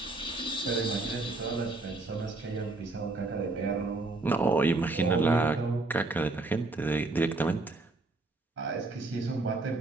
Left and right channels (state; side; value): quieter; left; 3.2 dB